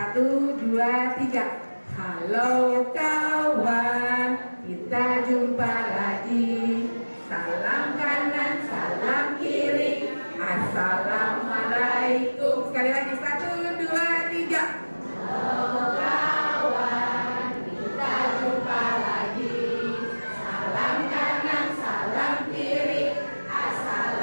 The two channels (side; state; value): both; inverted; correlation -1.00